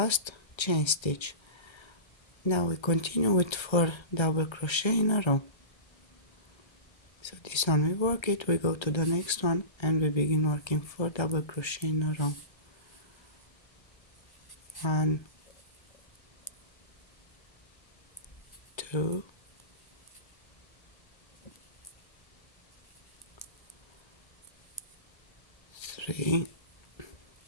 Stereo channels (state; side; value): late; right; 1.3 ms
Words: chain stitch. Now we continue with 4 double crochet in a row. So this one we work it, we go to the next one and we begin working 4 double crochet in a row. 1, 2, 3,